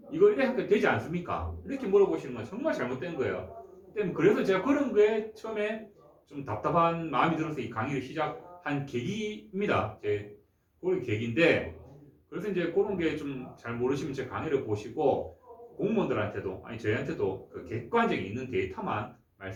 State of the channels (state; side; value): identical; both; correlation 1.00